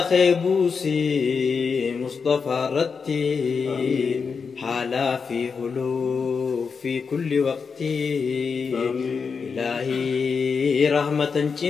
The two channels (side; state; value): right; quieter; 5.5 dB